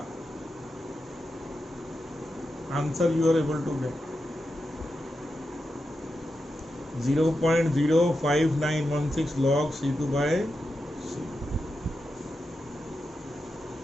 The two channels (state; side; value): normal; both; correlation 0.88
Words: answer you are able to get. 0.05916 log C2 by C।